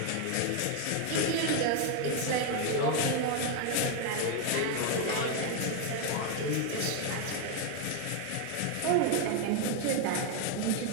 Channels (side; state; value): both; different; correlation 0.01